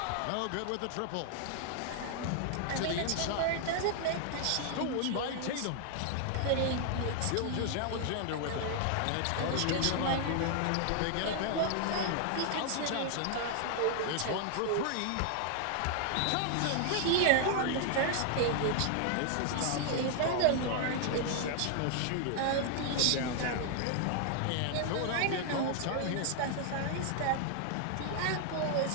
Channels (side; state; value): both; different; correlation 0.00